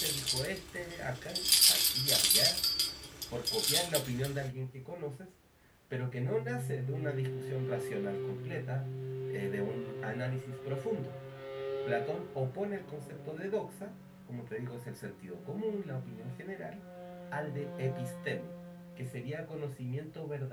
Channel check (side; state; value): both; identical; correlation 1.00